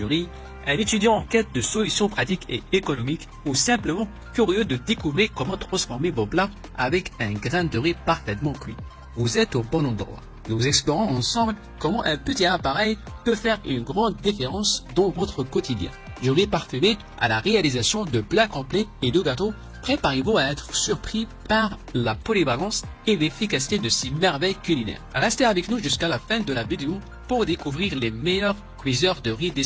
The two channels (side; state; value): both; identical; correlation 1.00